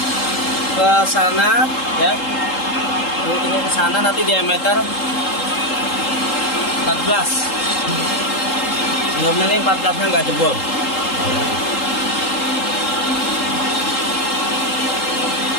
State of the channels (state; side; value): late; right; 3.7 ms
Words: ke sana ya. Bubut tingkat ke sana, nanti diameter 14. Mudah-mudahan ini 14-nya nggak jebol.